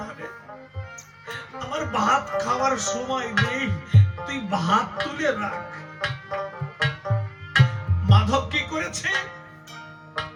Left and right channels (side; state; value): both; identical; correlation 1.00